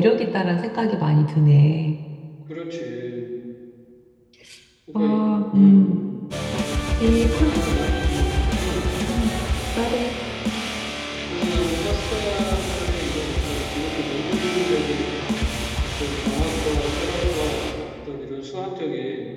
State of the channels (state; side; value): identical; both; correlation 1.00